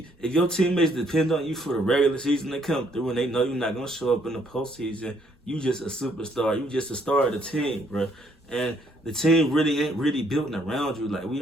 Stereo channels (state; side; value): normal; both; correlation 0.68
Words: your teammates depend on you for the regular season to come through and they know you're not gonna show up in the postseason, you just a superstar. You just a star of the team, bro. And the team really ain't really built around you. Like, we